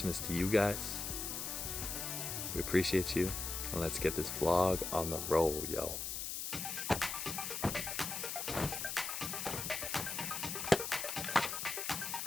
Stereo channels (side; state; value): left; noise; hiss, 3 dB below the sound